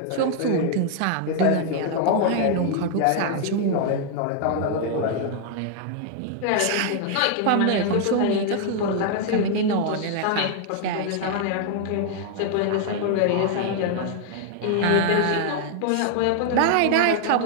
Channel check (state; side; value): different; both; correlation 0.00